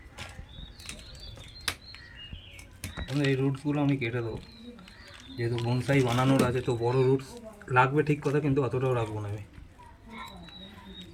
এই রুটসগুলো আমি কেটে দেবো, যেহেতু বনসাই বানানোর আছে, তো বড় রুটস লাগবে ঠিক কথা, কিন্তু অতটাও রাখবো না, আমি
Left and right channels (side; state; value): both; identical; correlation 1.00